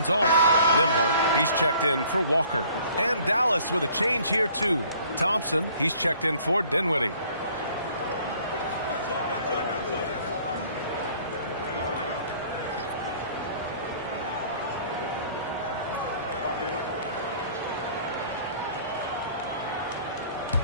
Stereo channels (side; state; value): both; inverted; correlation -0.55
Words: off. Nembhard, he's checked in for Walker. And Dallas with a change here, too. Thompson, he's checked in for Dinwiddie.